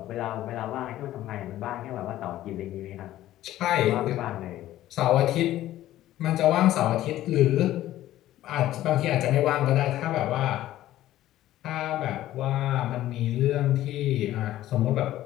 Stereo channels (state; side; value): quieter; right; 14.1 dB